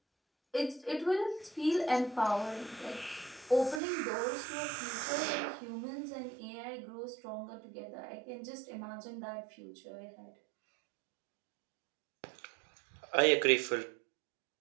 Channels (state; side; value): drops out; left; at 3.8 s